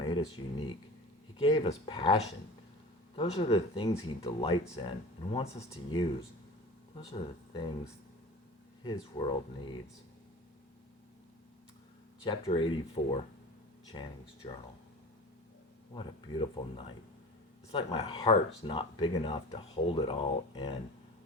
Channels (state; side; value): normal; both; correlation 0.36